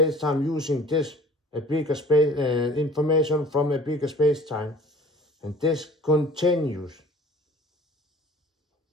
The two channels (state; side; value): normal; both; correlation 0.48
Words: using this a bigger space information from a bigger space-time, and this continues